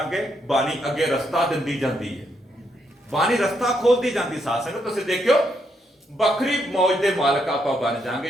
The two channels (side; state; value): both; normal; correlation 0.77